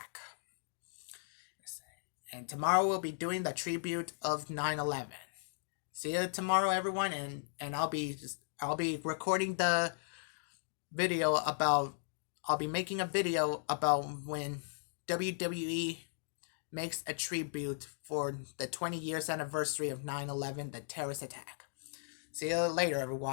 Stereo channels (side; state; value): right; silent; digital silence